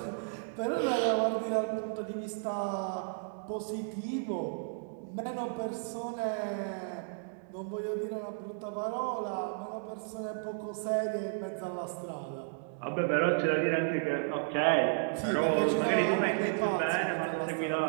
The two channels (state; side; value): silent; left; digital silence